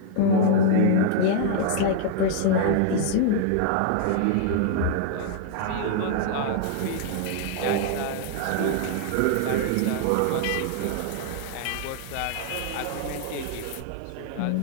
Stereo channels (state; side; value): different; both; correlation -0.01